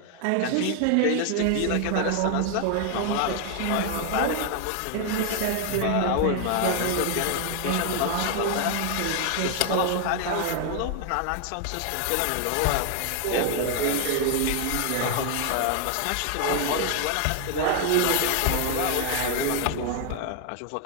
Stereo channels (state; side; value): different; both; correlation 0.00